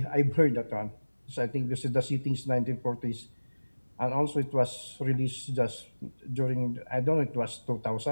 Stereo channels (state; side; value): inverted; both; correlation -1.00